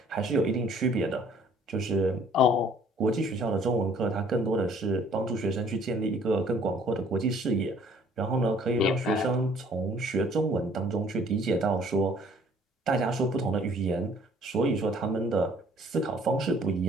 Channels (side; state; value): both; normal; correlation 0.57